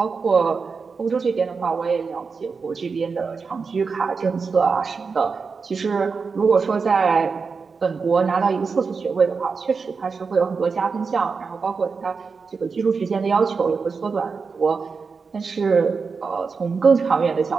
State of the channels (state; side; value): quieter; left; 5.0 dB